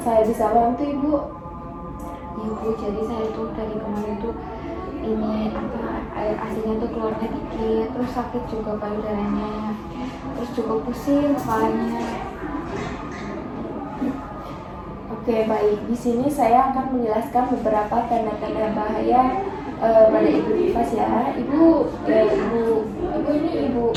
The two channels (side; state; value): both; identical; correlation 1.00